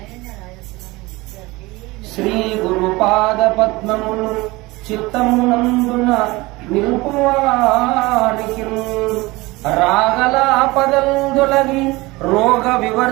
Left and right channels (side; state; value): left; quieter; 21.8 dB